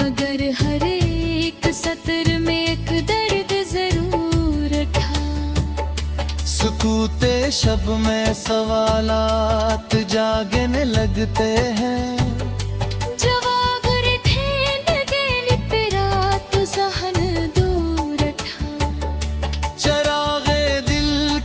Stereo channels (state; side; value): identical; both; correlation 1.00